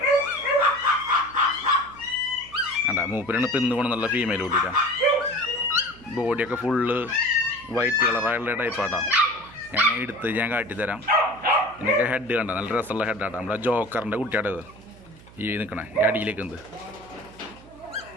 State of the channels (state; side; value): noise; right; hum, 21 dB below the sound